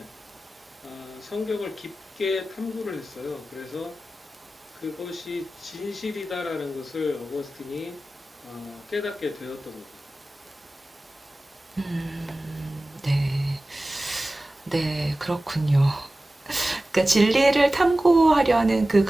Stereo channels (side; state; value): both; normal; correlation 0.96